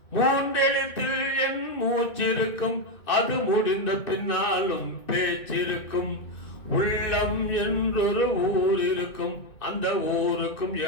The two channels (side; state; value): right; late; 2.1 ms